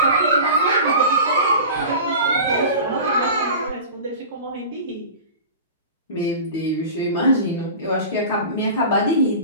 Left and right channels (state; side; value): inverted; both; correlation -0.34